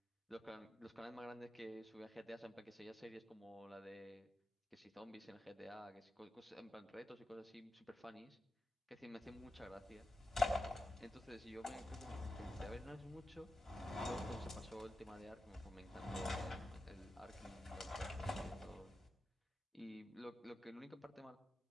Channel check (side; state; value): both; normal; correlation 0.90